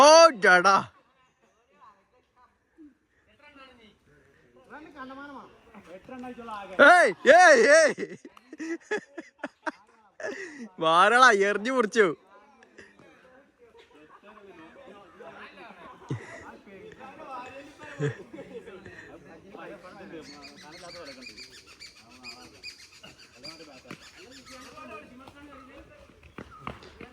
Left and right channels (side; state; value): both; identical; correlation 1.00